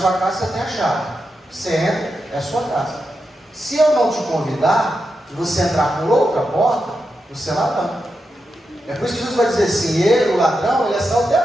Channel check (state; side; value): normal; both; correlation 0.87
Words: casa, você tem a chave. Você entra, é a sua casa. Se eu não te convidar, e você entrar por outra porta, você é ladrão. É por isso que Jesus vai dizer assim, ele, o ladrão, ele é